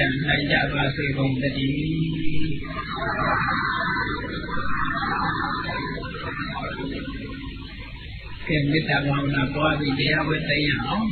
ံနိုင်ကြပါစေကုန်သတည်းကဲမေတ္တာဘာဝနာပွားပြီးတရားဝဲသိရအောင်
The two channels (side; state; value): both; identical; correlation 1.00